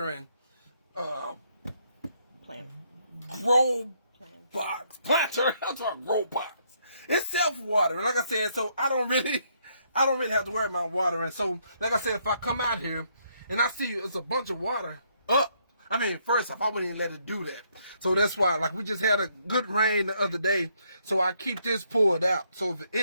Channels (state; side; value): inverted; both; correlation -0.71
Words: Plant. grow box. Planter. That's what grow box. It's self-watering. Like I said, so I don't really have to worry about watering. So, like I said, if I come out here and I see it's a bunch of water up, I mean, first off, I wouldn't even let it do that. So that's why, like, we just had a good rain the other day, so I keep this poured out. So if